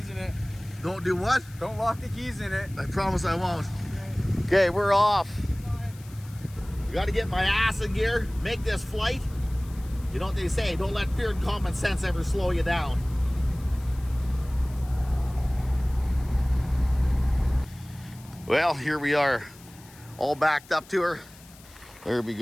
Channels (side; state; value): left; noise; hiss, 23 dB below the sound